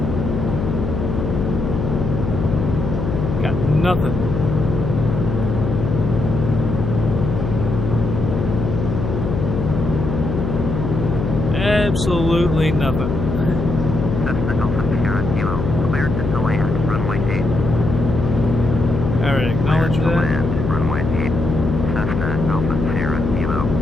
Got nothing. Absolutely nothing. Cessna Alpha Sierra Kilo, cleared to land, runway 8. Alright, acknowledge Cleared to that. land, runway 8. Cessna Alpha Sierra Kilo.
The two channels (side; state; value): left; noise; hum, 2 dB below the sound